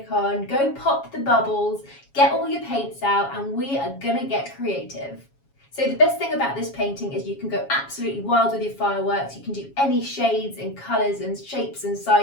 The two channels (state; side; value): late; right; 7.2 ms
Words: on, go pop the bubbles, get all your paints out, and we are gonna get creative. So the best thing about this painting is you can go absolutely wild with your fireworks. You can do any shades and colours and shapes and